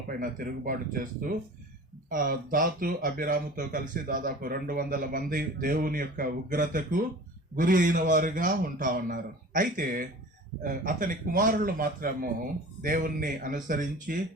పైన తిరుగుబాటు చేస్తూ దాతు అభిరాముతో కలిసి దాదాపు 200 మంది దేవుని యొక్క ఉగ్రతకు గురి అయిన వారుగా ఉన్నారు. అయితే అతని కుమారులు మాత్రము దేవుణ్ణి అనుసరించి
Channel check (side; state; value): both; normal; correlation 0.40